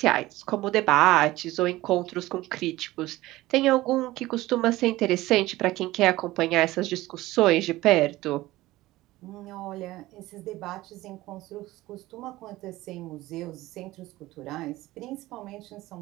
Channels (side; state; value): left; quieter; 17.6 dB